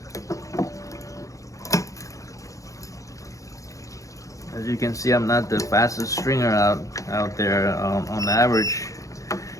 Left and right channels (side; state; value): right; late; 0.16 ms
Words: As you can see, I'm not the fastest stringer out there. On average,